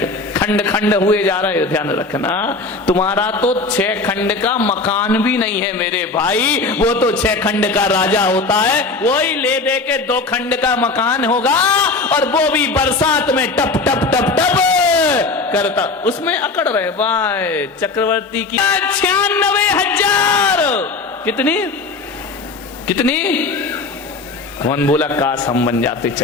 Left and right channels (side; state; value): right; quieter; 3.7 dB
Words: खंड खंड हुए जा रहे हो। ध्यान रखना, तुम्हारा तो 6 खंड का मकान भी नहीं है मेरे भाई, वो तो 6 खंड का राजा होता है। वही ले दे के 2 खंड का मकान होगा, और वो भी बरसात में टप टप टप टप करता, उसमें अकड़ रहे भाई। चक्रवर्ती की 96,000। कितनी कितनी? कौन बोला काश हम बन जाते